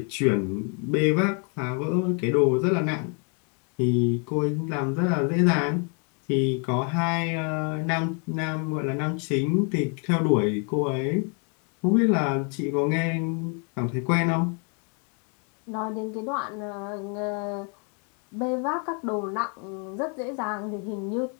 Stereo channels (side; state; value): right; quieter; 38.1 dB